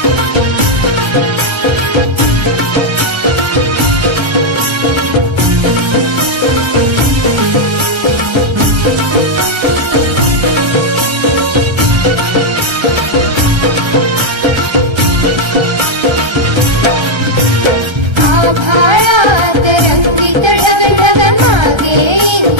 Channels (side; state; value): left; late; 1.3 ms